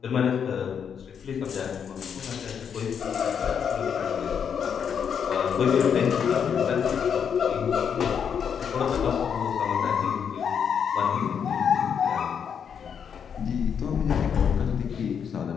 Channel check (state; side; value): quieter; right; 7.5 dB